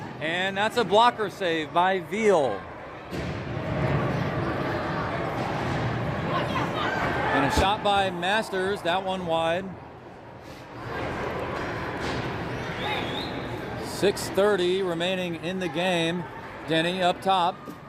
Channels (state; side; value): identical; both; correlation 1.00